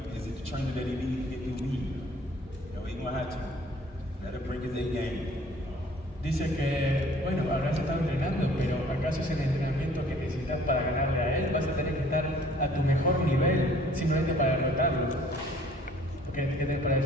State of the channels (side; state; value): both; normal; correlation 0.55